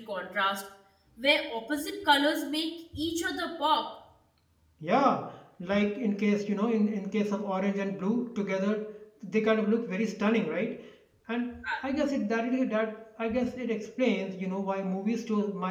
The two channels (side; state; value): both; identical; correlation 1.00